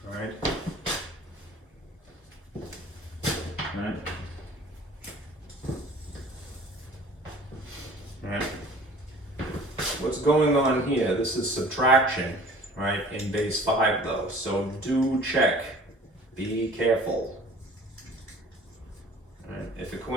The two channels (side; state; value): both; normal; correlation 0.48